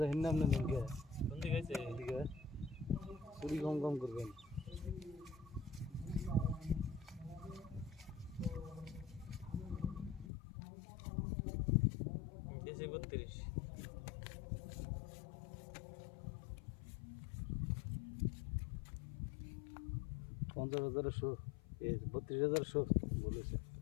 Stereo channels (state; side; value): drops out; right; at 10.3 s